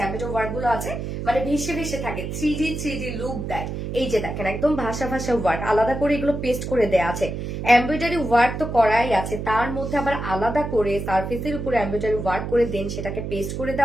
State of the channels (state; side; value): noise; right; hum, 5 dB below the sound